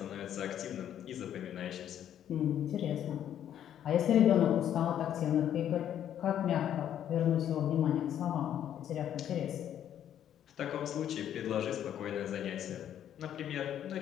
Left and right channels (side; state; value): right; quieter; 10.3 dB